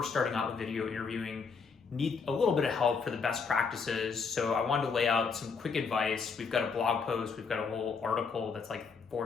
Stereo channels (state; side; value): quieter; right; 5.3 dB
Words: starting out with video interviewing, need a little bit of help for the best practices. So I wanted to lay out some quick advice. We've got a blog post, we've got a whole article that's like